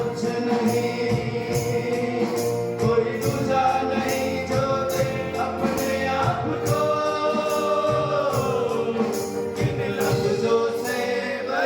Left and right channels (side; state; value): both; identical; correlation 1.00